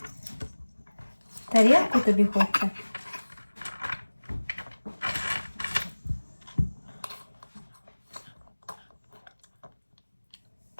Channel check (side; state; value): both; inverted; correlation -1.00